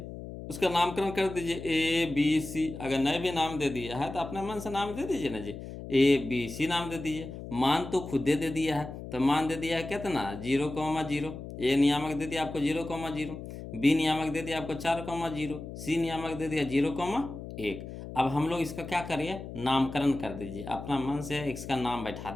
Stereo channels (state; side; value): noise; left; hum, 10 dB below the sound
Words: उसका नामकरण कर दीजिए ए बी सी, अगर नए भी नाम दे दिया है तो अपने मन से नाम दे दीजिए ना जी, ए बी सी नाम दे दीजिए। मान तो खुद दे दिया है, तो मान दे दिया है कितना 0,0, ए नियामक दे दिया आपको 0,0, बी नियामक दे दिया आपको 4,0, सी नियामक दे दिया 0,1। अब हम लोग इसका क्या करिए, नामकरण कर दीजिए, अपना मन से इसका नाम बैठा